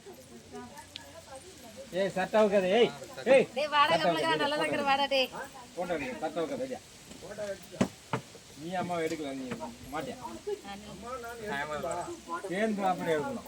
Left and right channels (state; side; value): identical; both; correlation 1.00